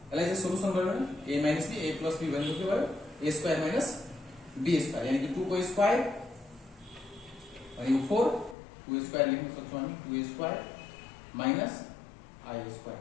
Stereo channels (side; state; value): right; drops out; at 8.6 s